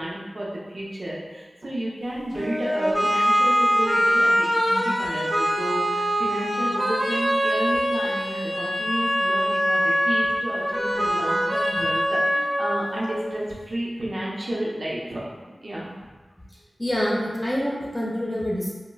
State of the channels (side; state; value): both; normal; correlation 0.97